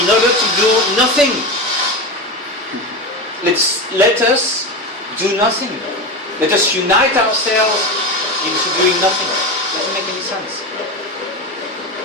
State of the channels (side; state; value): both; normal; correlation 0.20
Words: order to do nothing. Let us do nothing. Let us unite ourselves into doing nothing. Doesn't make any sense.